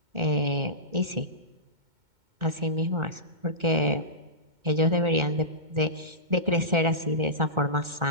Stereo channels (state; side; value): late; left; 2.2 ms